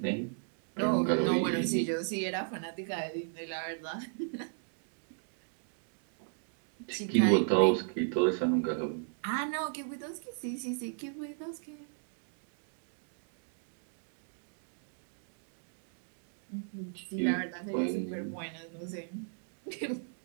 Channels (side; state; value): left; silent; digital silence